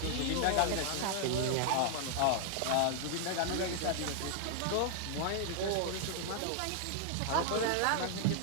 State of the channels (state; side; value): different; both; correlation 0.00